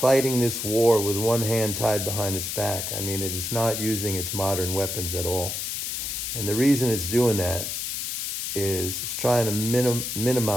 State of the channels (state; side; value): noise; left; hiss, 3 dB below the sound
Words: this war with one hand tied behind its back. I mean, it is not using its modern weapons at all. And the reason it's doing that is it's trying to